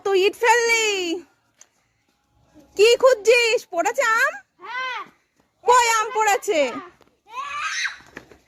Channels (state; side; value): identical; both; correlation 1.00